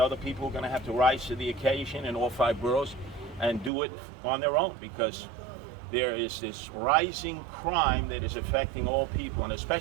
people are going to have to rise to the occasion in all 5 boroughs and do it on their own, because there is this rising crime that is affecting all people, and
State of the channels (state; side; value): drops out; left; at 3.7 s